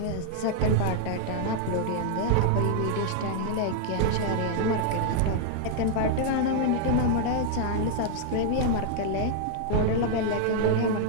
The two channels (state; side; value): different; both; correlation 0.00